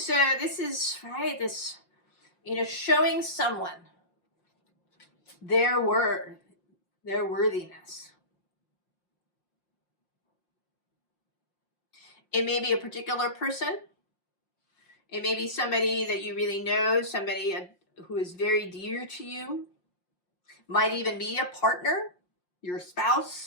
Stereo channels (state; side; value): late; right; 5.7 ms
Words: right, this, showing someone their worthiness. It may be a particular person. It may be somebody that you really know, somebody who is very dear to you. Might even be a partner, your